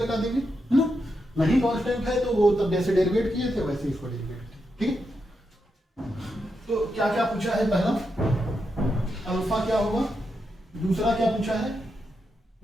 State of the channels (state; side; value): normal; both; correlation 0.85